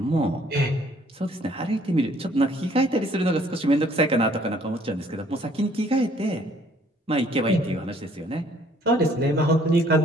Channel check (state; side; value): normal; both; correlation 0.60